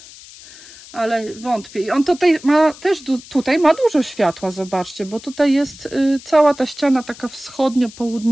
ale wątpię. I on tutaj ma też ma dużo światła, zobaczcie, bo tutaj jest cała ta ściana taka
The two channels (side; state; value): left; noise; hiss, 19 dB below the sound